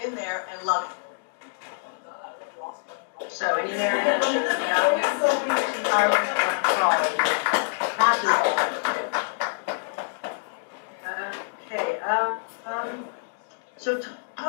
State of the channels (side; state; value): right; silent; digital silence